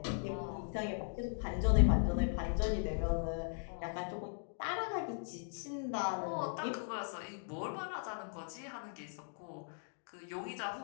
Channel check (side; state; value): right; silent; digital silence